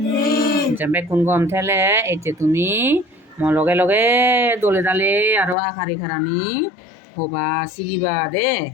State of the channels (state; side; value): drops out; right; at 5.6 s